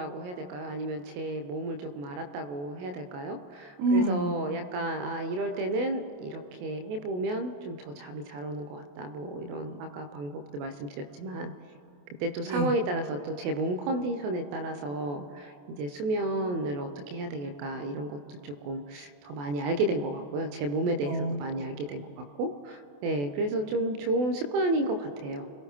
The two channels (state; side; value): late; left; 28 ms